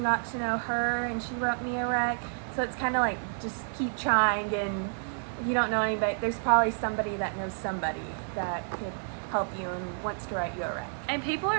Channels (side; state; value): left; silent; digital silence